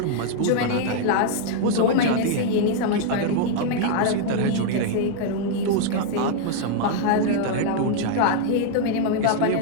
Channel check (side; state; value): both; different; correlation 0.00